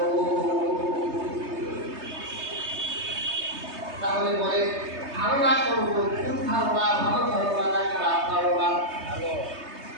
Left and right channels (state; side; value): late; left; 3.3 ms